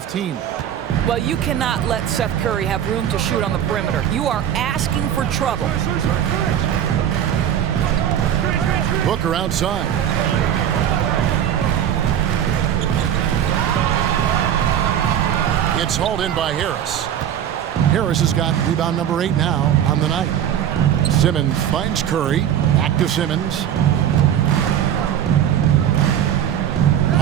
Well, you cannot let Seth Curry have room to shoot on the perimeter. You are asking for trouble. Booker outside. It's hauled in by Harris. Harris has got rebound number 8 now on the night. Simmons finds Curry. Back to Simmons.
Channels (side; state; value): left; quieter; 9.9 dB